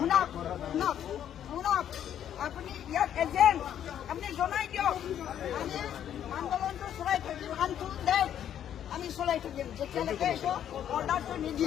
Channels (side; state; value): right; quieter; 10.0 dB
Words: শুনক আপুনি ইয়াত এজেণ্ট আপুনি জনাই দিয়ক। আমি আন্দোলনটো চলাই থাকিম আমি চলাই থাকিম যেতিয়ালৈকে এইটো অৰ্ডাৰটো